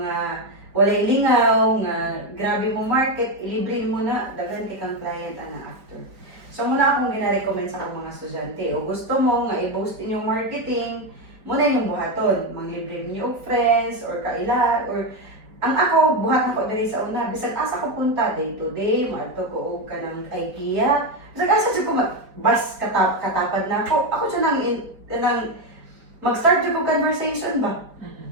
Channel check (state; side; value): late; left; 4.6 ms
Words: walay lingaw nga grabe mo market, ilibre mo na daghan kay kang client ana after. So muna akong gina-recommend sa akong mga estudyante. O gusto mo nga i-boost inyong marketing, muna inyong buhaton. Manglibre niyo og friends, or kaila, or ang ako, buhat na ko diri sa una. Bisan asa ko punta, day to day, maato ko og kanang IKEA. Bisan asa siya ko bus katapad na ako. Ako siya nang mag-start ko conversation ba?